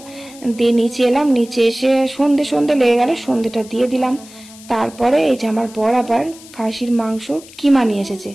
দিয়ে নিচে এলাম, নিচে এসে সন্ধে লেগে গেল, সন্ধেটা দিয়ে দিলাম। তারপরে এই যে আমার বর আবার খাসির মাংস কিমা নিয়ে এসেছে,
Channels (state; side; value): noise; left; hiss, 20 dB below the sound